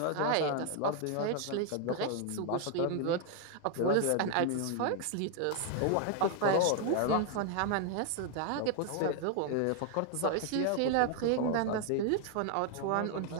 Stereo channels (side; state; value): both; different; correlation 0.00